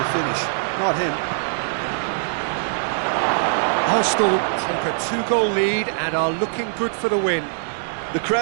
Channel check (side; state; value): left; silent; 62 dB below the other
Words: finish? Not him. Arsenal take a 2-goal lead and are looking good for the win. The